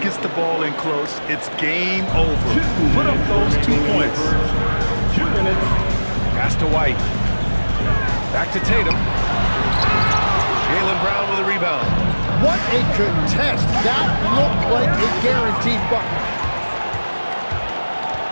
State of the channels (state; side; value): inverted; both; correlation -1.00